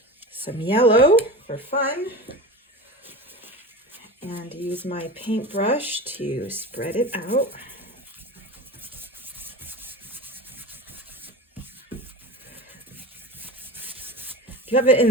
some yellow for fun and use my paintbrush to spread it out. If you have it in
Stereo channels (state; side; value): normal; both; correlation 0.30